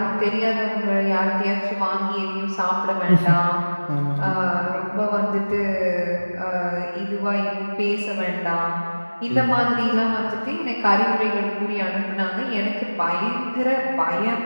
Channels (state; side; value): inverted; both; correlation -1.00